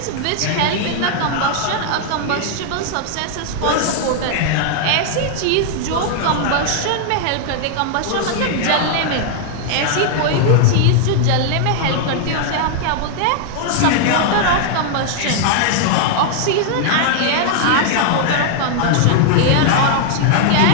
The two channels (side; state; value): both; different; correlation 0.00